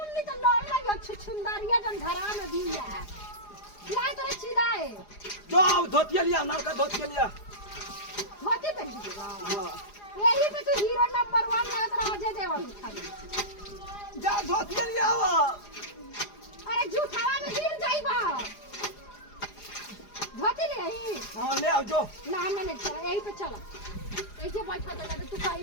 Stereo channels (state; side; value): late; right; 4.9 ms